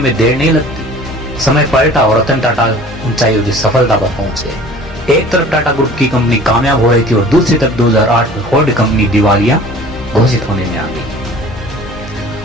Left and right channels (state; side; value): normal; both; correlation 0.46